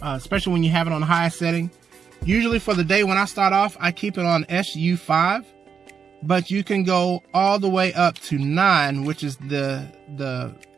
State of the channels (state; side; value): quieter; left; 6.7 dB